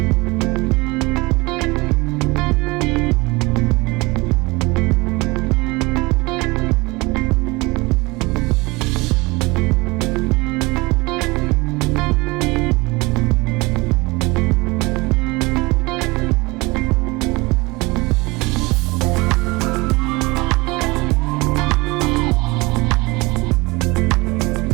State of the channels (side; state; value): left; quieter; 24.1 dB